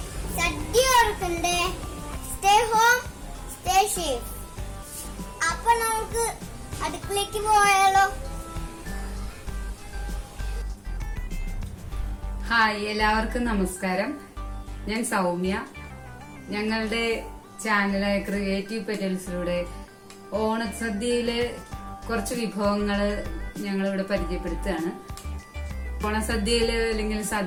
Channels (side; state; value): both; identical; correlation 1.00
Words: സദ്യ ഓർക്കണ്ടേ. Stay home, stay safe. അപ്പൊ നമുക്ക് അടുക്കളയ്ക്ക് പോയാലോ? ഹായ്, എല്ലാവർക്കും നമസ്കാരം. ഞാൻ സൗമ്യ. ഞങ്ങളുടെ ചാനലായ ക്രിയേറ്റീവ് പെറ്റൽസിലൂടെ ഓണസദ്യയിലെ കുറച്ച് വിഭവങ്ങള് ഞങ്ങളിവിടെ പരിചയപ്പെടുത്തുകയാണ്. ഓണസദ്യയില് അല്ലെങ്കിൽ